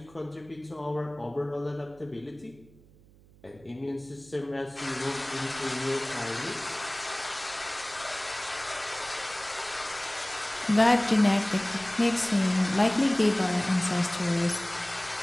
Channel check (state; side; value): noise; right; hum, 26 dB below the sound